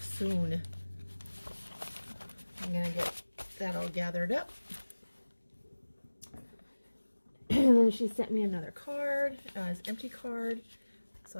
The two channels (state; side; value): inverted; both; correlation -1.00